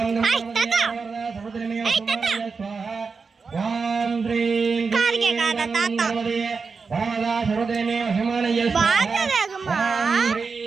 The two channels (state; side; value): quieter; left; 4.9 dB